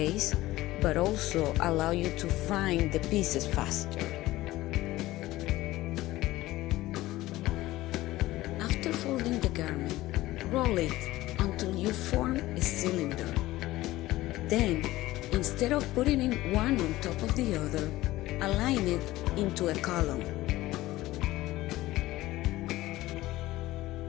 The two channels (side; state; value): right; quieter; 17.2 dB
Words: but also allow you to find the pieces faster. After folding the garment, roll it until you form a cylinder. Then, instead of putting it one on top of the other, align it into a column.